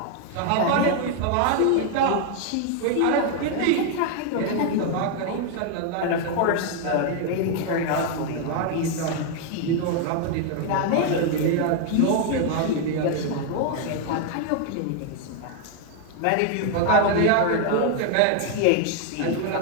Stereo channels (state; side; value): different; both; correlation 0.00